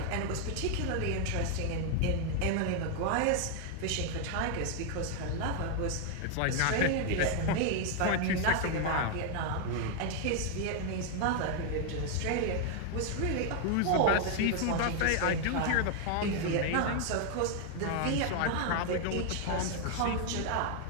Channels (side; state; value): both; different; correlation 0.00